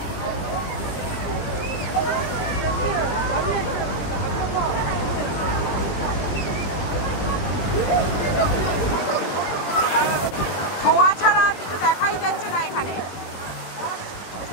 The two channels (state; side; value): late; right; 21 ms